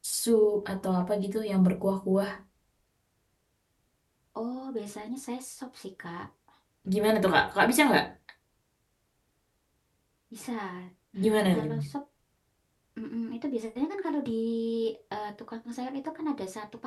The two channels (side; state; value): both; identical; correlation 1.00